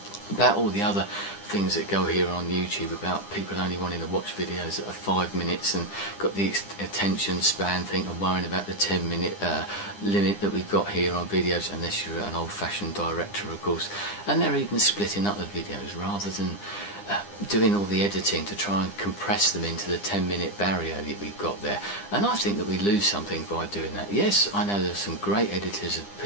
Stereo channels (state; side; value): late; right; 9.9 ms